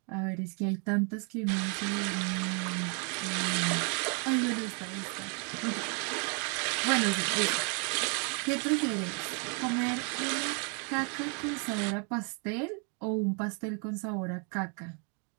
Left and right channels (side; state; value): left; quieter; 38.1 dB